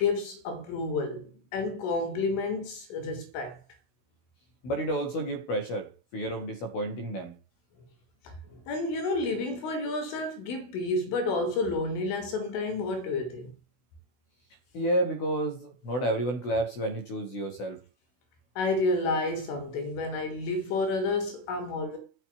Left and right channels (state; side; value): late; right; 16 ms